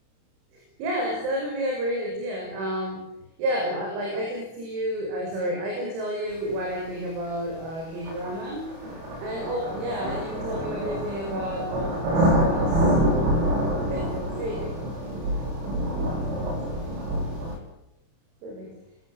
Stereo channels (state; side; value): late; left; 31 ms